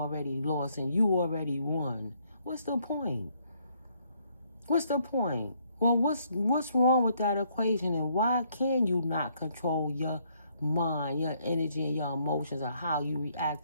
lost and you already won. What's the point? What's the point? Well, what's wrong with that equation, and why can you not control your mind, your energy, and your emotions, or how you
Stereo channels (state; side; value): inverted; both; correlation -0.69